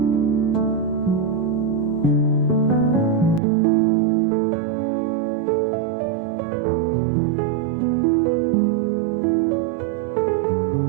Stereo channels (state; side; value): drops out; left; at 3.4 s